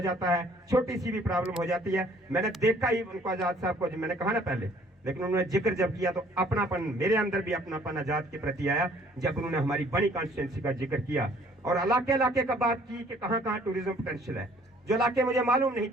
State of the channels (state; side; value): normal; both; correlation 0.58